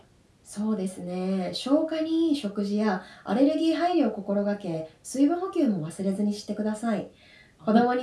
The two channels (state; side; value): identical; both; correlation 1.00